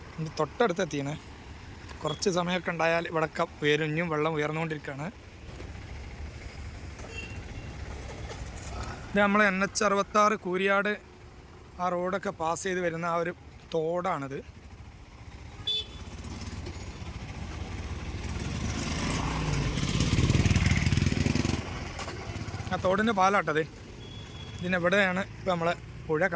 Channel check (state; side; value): identical; both; correlation 1.00